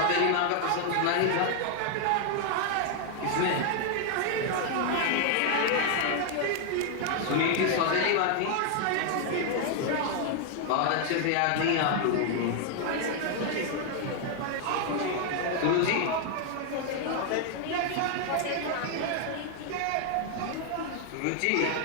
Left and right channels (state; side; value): different; both; correlation 0.00